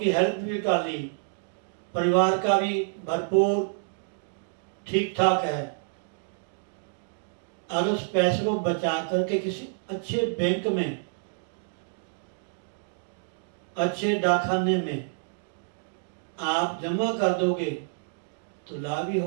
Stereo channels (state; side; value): silent; left; digital silence